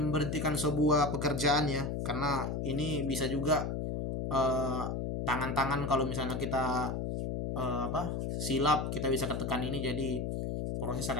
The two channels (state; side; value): noise; left; hum, 2 dB below the sound